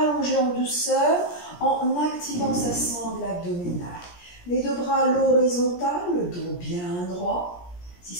en douceur en activant sa sangle abdominale. Les deux bras à l'horizontale, le dos bien droit. Si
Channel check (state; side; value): late; right; 17 ms